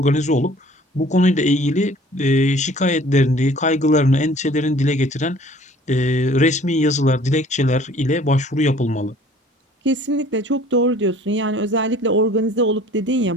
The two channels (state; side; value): normal; both; correlation 0.52